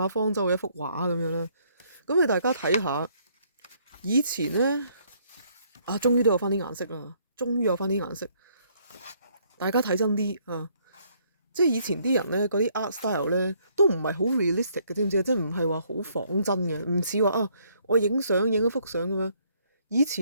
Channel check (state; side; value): inverted; both; correlation -0.67